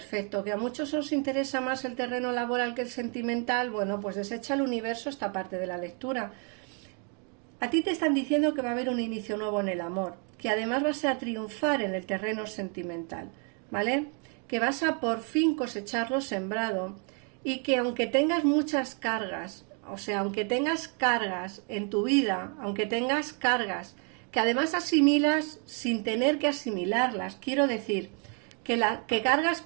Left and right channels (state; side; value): quieter; left; 38.9 dB